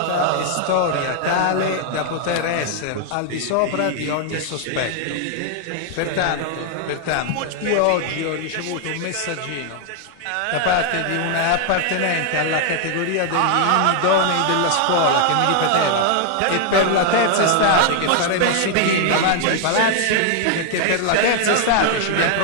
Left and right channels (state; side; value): different; both; correlation 0.00